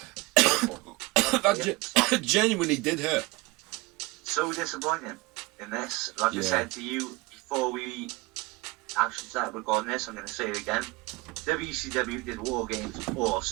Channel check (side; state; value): left; quieter; 22.6 dB